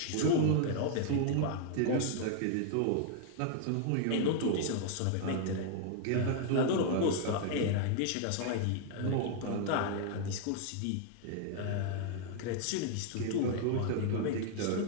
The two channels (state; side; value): different; both; correlation 0.00